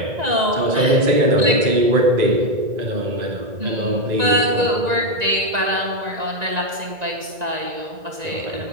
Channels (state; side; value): late; left; 1.9 ms